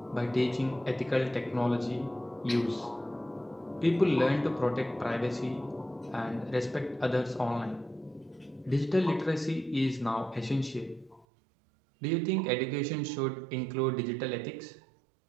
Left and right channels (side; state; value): left; drops out; at 11.2 s